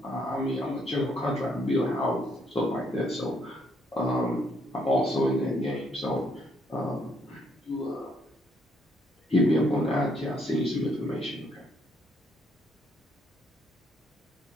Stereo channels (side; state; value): both; normal; correlation 0.70